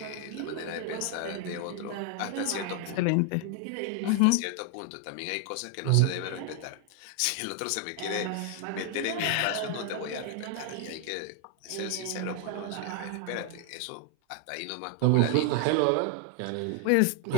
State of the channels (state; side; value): different; both; correlation 0.00